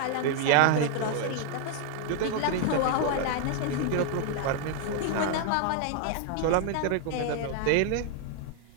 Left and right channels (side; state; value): both; different; correlation 0.00